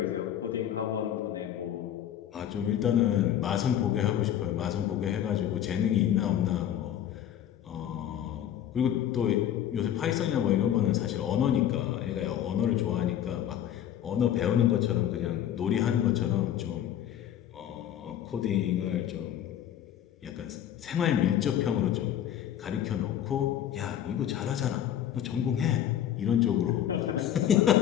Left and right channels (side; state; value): right; quieter; 10.7 dB